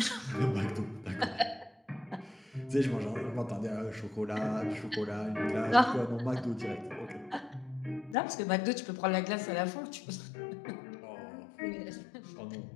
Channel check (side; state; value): right; drops out; at 8.2 s